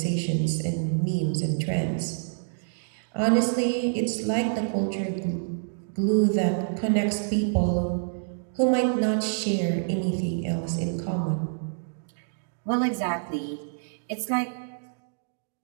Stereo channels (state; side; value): silent; left; digital silence